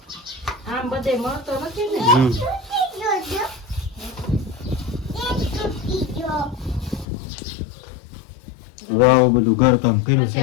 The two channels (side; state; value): right; drops out; at 7.1 s